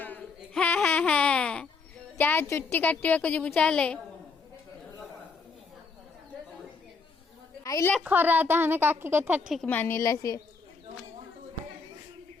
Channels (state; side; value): quieter; right; 4.7 dB